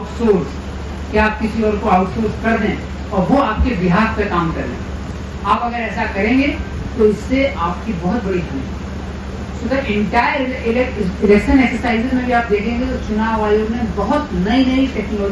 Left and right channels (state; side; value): identical; both; correlation 1.00